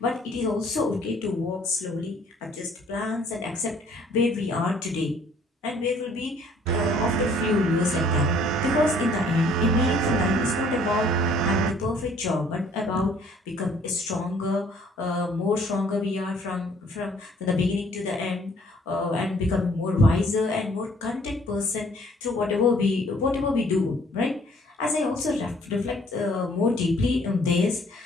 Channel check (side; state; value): both; normal; correlation 0.59